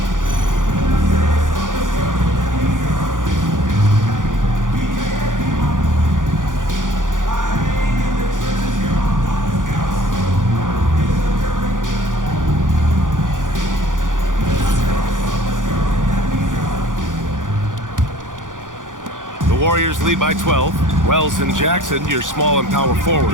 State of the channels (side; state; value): left; late; 0.88 ms